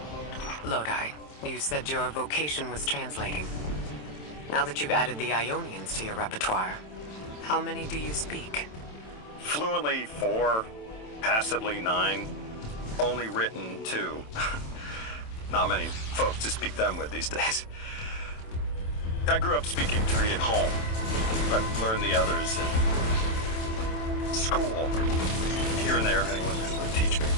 Lodi, you said your vocation was translating. Now that you've added the Ionians to your repertoire, how many do you speak? Fluently 4, passively 9, only written 2. Not many folks to speak them with these days. I grew up speaking 3 at home, but learned the others in school. Here and there, anyone who would teach me.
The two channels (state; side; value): late; right; 27 ms